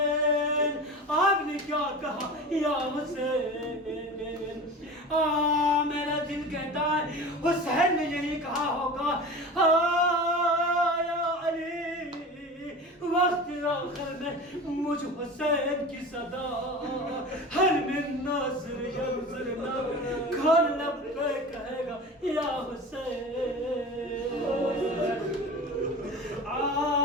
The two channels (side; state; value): both; normal; correlation 0.33